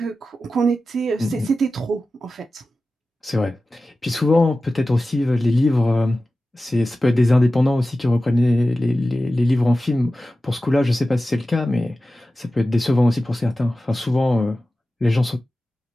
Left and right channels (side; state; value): both; normal; correlation 0.95